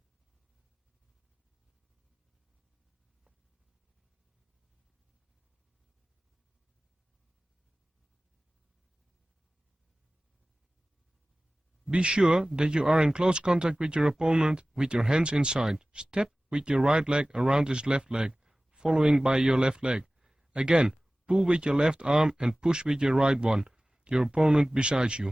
Be sure that you are in close contact with your opponent with your hands inside. Step with your right leg around his left leg, following by your left leg. Again, pull with your left arm and push with your right one, your opponent beside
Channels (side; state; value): both; normal; correlation 0.97